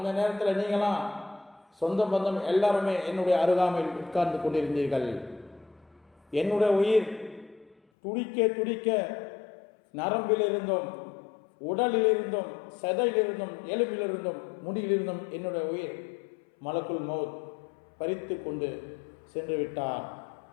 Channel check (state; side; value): drops out; right; at 7.8 s